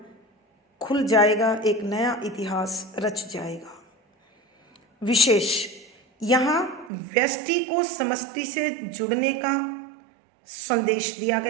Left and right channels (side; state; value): left; drops out; at 6.9 s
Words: खुल जाएगा, एक नया इतिहास रच जाएगा। विशेष यहाँ व्यष्टि को समष्टि से जुड़ने का संदेश दिया